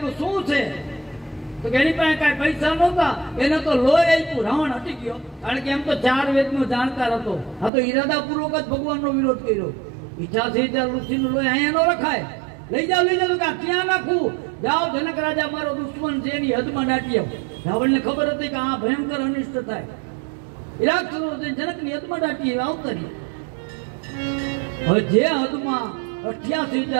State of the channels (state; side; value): drops out; left; at 7.7 s